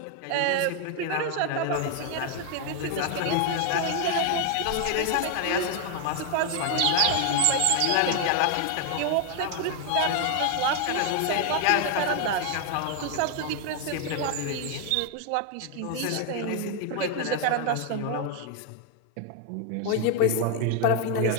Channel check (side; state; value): both; different; correlation 0.01